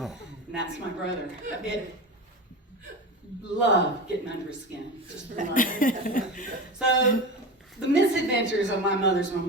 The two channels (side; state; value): both; normal; correlation 0.27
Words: that's my brother. Love getting under his skin. Just love it. So, the misadventures of my mother's